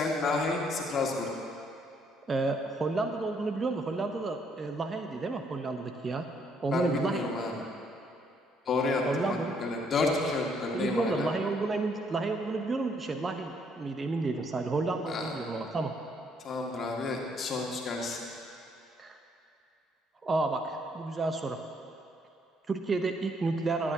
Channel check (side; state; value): both; normal; correlation 0.69